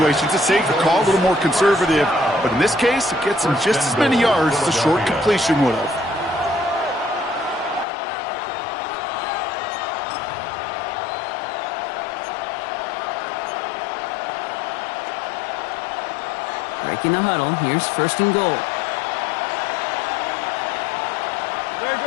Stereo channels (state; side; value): drops out; right; at 7.9 s